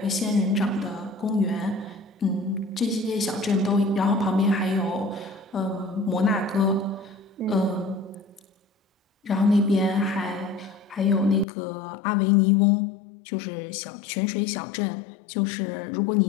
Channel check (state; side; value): drops out; right; at 11.5 s